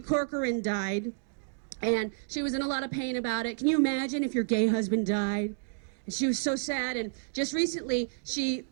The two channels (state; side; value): silent; left; digital silence